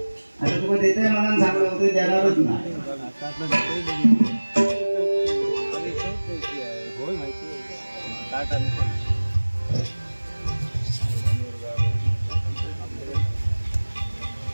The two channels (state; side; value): inverted; both; correlation -1.00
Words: आता तुला देते मनानं सांगलं होतं देणारच नाही.